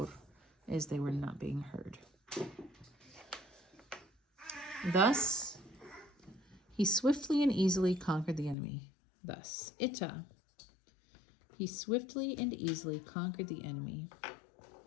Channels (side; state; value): right; drops out; at 8.6 s